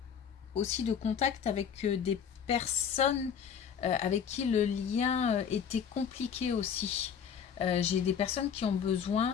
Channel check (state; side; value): quieter; right; 7.6 dB